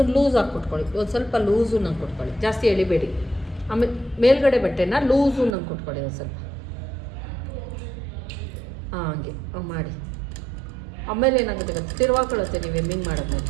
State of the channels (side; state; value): left; drops out; at 5.6 s